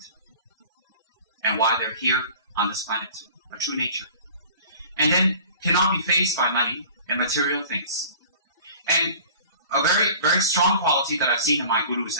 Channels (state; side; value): inverted; both; correlation -0.44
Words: And why they're here on this planet. A true nature. And then cannot be fazed by money and material things. And a very, very strong quality that I've seen in my gurus,